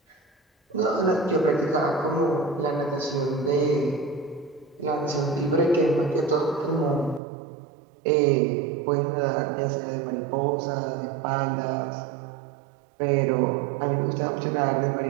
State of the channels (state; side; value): drops out; left; at 7.2 s